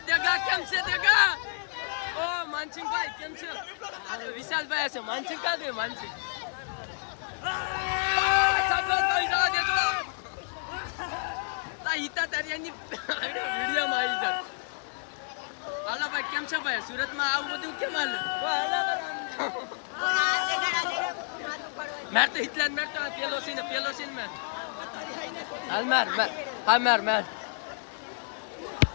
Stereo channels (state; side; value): silent; right; 58 dB below the other